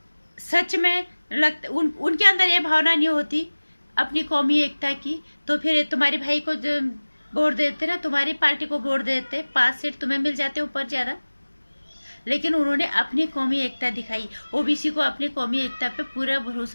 सच में उनके अंदर ये भावना नहीं होती अपनी कौमी एकता की, तो फिर तुम्हारे भाई को वोट देते ना, तुम्हारी पार्टी को वोट देते, 5 सीट तुम्हें मिल जाते ऊपर ज्यादा। लेकिन उन्होंने अपनी कौमी एकता दिखाई। ओबीसी को अपनी कौमी एकता पे पूरा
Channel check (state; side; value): inverted; both; correlation -1.00